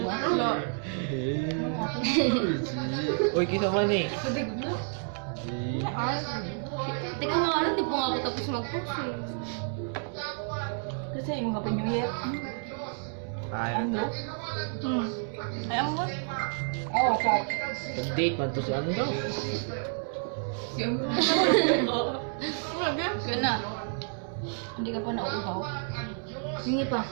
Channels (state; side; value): silent; left; 58 dB below the other